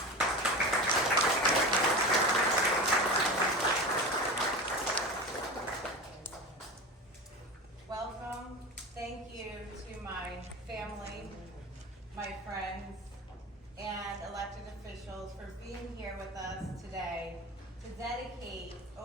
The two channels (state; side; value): normal; both; correlation 0.28